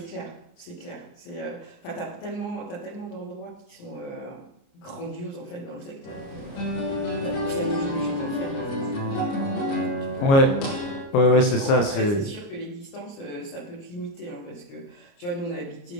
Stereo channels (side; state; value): right; late; 29 ms